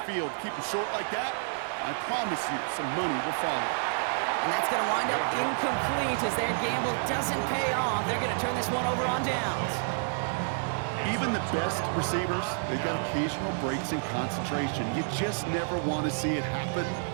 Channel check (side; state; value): left; silent; digital silence